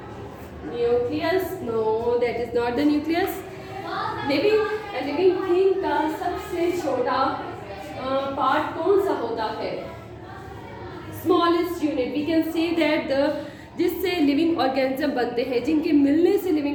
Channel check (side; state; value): both; identical; correlation 1.00